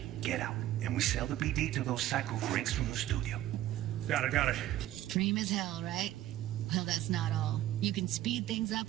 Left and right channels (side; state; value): left; quieter; 13.8 dB